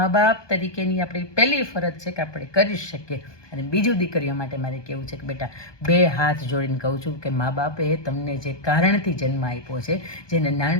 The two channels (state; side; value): late; right; 1.2 ms